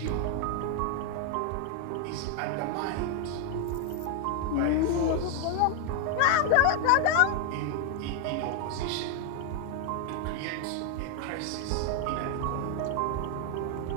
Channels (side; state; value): both; different; correlation 0.01